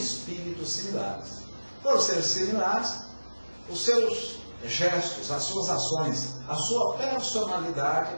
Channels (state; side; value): inverted; both; correlation -1.00